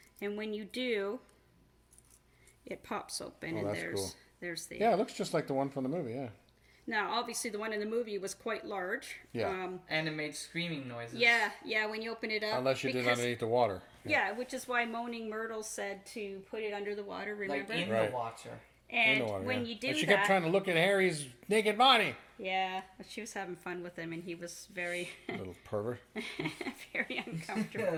And when you do, it pops open, Oh, and that's cool. there's the. Yeah, it looks just like the one from the movie. Yeah. Now, obviously, the one in the movie was quite large. Yeah. And it made screaming noises. Yeah, when you open it up. Unless you did because- underneath the water. Yeah, which is why Moaning Myrtle said to put it under the water. Remember? Like in Right. the water. and In the water, when yeah. you do But she that, kept trying to look at Harry's naked body. yeah, but she was having fun with him, and he was very, Little pervert. very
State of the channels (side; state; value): both; identical; correlation 1.00